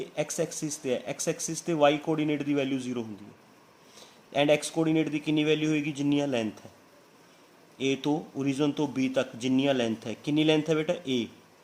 एक्स एक्सिस ਤੇ है, एक्स एक्सिस ਤੇ वाई कोऑर्डिनेट की वैल्यू 0 ਹੁੰਦੀ है, एंड एक्स कोऑर्डिनेट की कितनी वैल्यू होएगी जिन्नियां लेंथ है, ए तो ओरिजन तो बी तक जिन्नियां लेंथ है, कितनी लेंथ है बेटा ए,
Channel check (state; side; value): identical; both; correlation 1.00